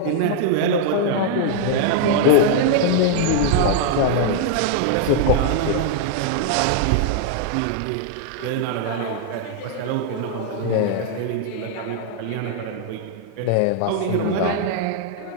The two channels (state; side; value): different; both; correlation 0.00